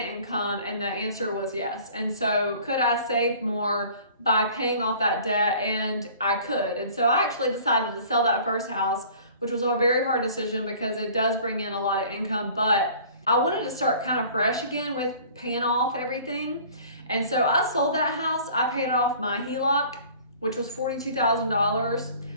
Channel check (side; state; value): both; inverted; correlation -0.49